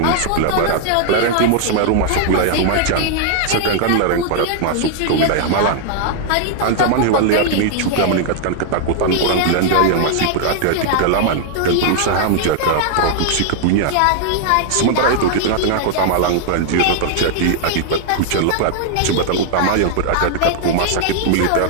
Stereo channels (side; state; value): both; different; correlation 0.00